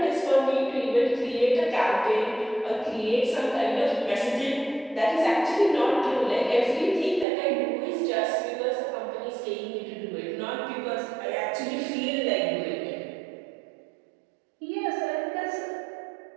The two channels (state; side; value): drops out; left; at 7.2 s